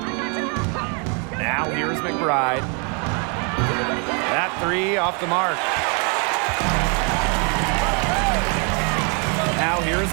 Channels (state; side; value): quieter; left; 36.5 dB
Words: Now here's McBride. That 3 off the mark. Now here's